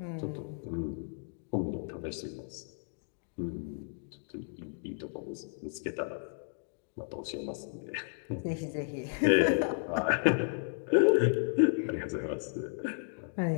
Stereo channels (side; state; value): right; silent; digital silence